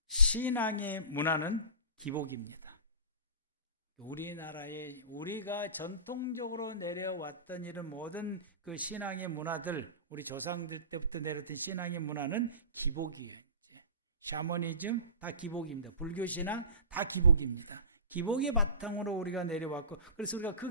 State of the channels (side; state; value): both; inverted; correlation -0.35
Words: 신앙의 문화는 기복입니다. 우리나라에 우리가 전통적으로 내려왔던 이런 모든 그 신앙의 문화들, 우리 조상들 때부터 내려왔던 신앙의 문화는 기복이에요. 샤머니즘 다 기복입니다. 불교신앙 다 기복입니다. 기복의 바탕으로 우리가 내려왔고, 그래서 우리가